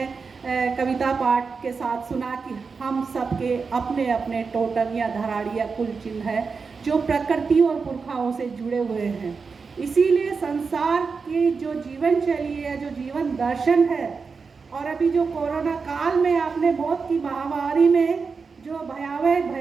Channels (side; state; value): left; quieter; 5.0 dB